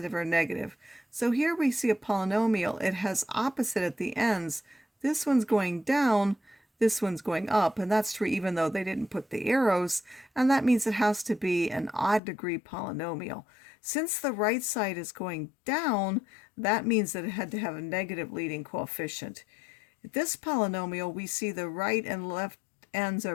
or negative. So here we see a polynomial. It has opposite at the ends. This one's going down, this one's going up, and that's true even though they didn't put the arrows, and that means it has to be an odd degree polynomial. Since the right side is going down, that means that it had to have a negative leading coefficient. At this polynomial, we see the right and left ends are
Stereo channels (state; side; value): drops out; right; at 12.2 s